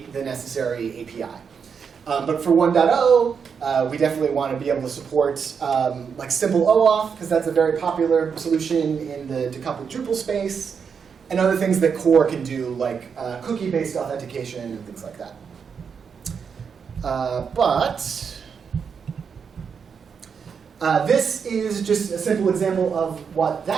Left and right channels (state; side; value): quieter; left; 6.4 dB